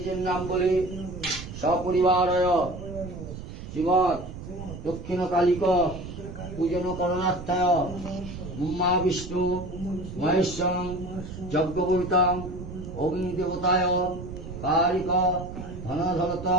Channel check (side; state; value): right; noise; rumble, 10 dB below the sound